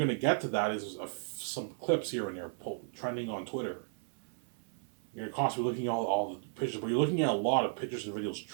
to get to that is some clips here and there trending on Twitter. You're constantly looking at all the pictures, but you're looking at a lot of pictures and videos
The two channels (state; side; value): silent; left; 55 dB below the other